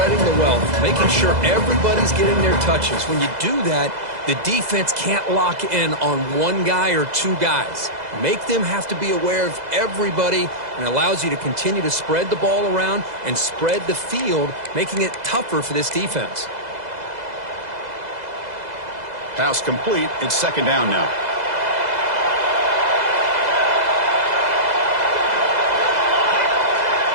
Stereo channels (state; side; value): late; left; 2.0 ms